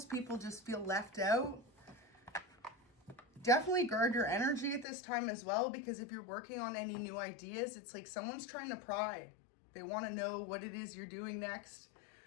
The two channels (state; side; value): drops out; right; at 4.9 s